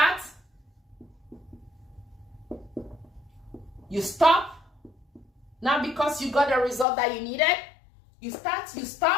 you stop, not because you got the result that you needed. You start, you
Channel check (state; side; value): drops out; right; at 6.9 s